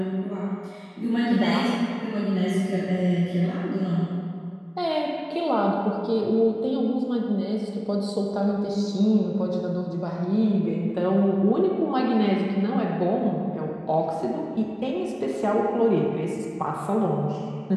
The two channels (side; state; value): both; identical; correlation 1.00